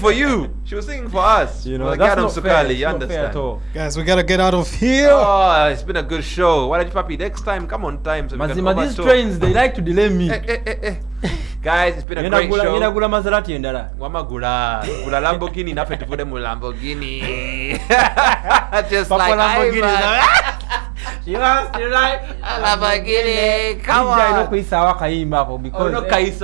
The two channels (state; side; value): drops out; left; at 12.1 s